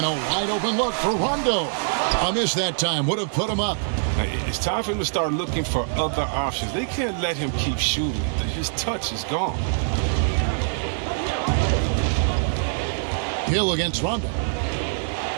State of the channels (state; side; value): silent; left; 55 dB below the other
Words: a wide open look for Rondo. A miss that time would have put him up. It's time for him to start looking for other options. They can't let him keep shooting. His touch is gone. Hill against Rondo.